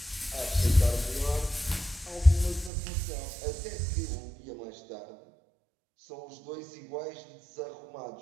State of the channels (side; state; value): left; drops out; at 2.7 s